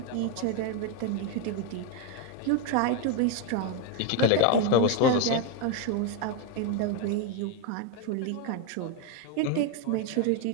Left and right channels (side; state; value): both; different; correlation 0.02